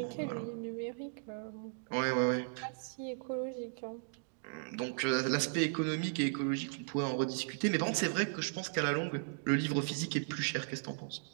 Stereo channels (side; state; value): left; silent; digital silence